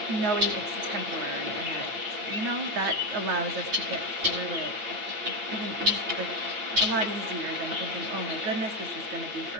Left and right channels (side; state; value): left; late; 8.9 ms